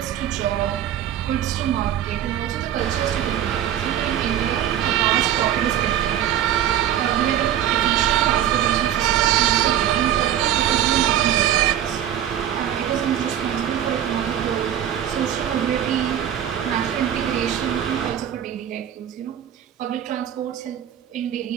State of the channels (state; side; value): quieter; left; 10.8 dB